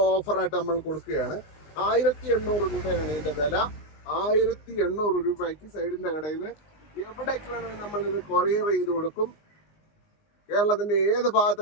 ഓഫറായിട്ട് നമ്മൾ കൊടുക്കുകയാണ്. 1800 രൂപയാണ് ഇതിൻ്റെ വില. 1800 രൂപയ്ക്ക് സൈഡിൻ്റെ കടയിൽ നിന്ന് എവിടേക്ക് വേണമെങ്കിൽ നമ്മളിത് കൊറിയർ ചെയ്ത് കൊടുക്കും. കേരളത്തിൻ്റെ ഏത്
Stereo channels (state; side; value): late; right; 19 ms